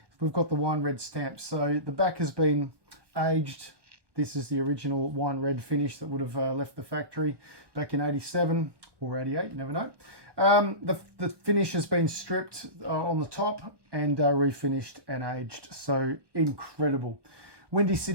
we've got the wine red stamp. So the back has been aged. This is the original wine red finish that would have left the factory back in 87 or 88, you never know. The finish has been stripped on the top and refinished and aged. So incredible. Windy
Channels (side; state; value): left; late; 1.1 ms